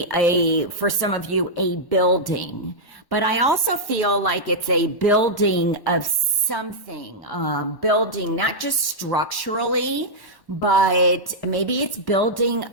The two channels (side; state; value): right; late; 1.1 ms